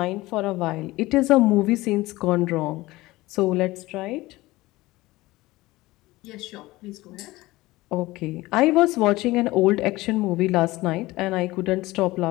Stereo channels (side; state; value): right; quieter; 19.3 dB